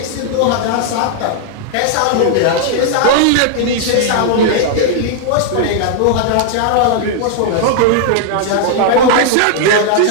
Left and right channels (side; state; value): both; different; correlation 0.00